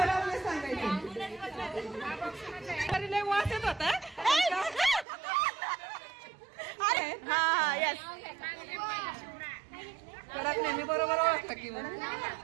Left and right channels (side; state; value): left; drops out; at 5.1 s